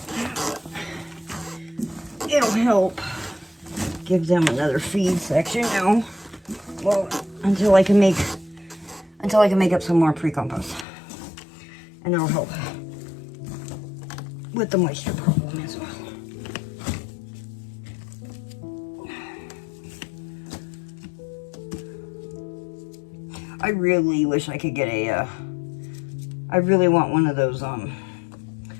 It'll help give them another feed section now. Well, until I can make up some more pre-compost, and it'll help with the moisture problem as well. I really wish I could get a, I really want one of those,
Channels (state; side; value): drops out; right; at 10.9 s